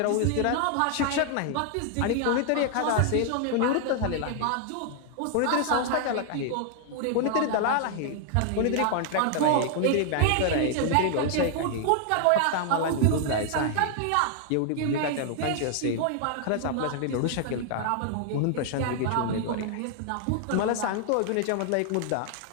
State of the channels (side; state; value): both; different; correlation 0.00